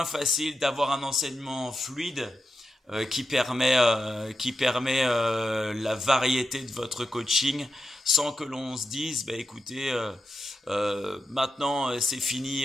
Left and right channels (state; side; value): normal; both; correlation 0.88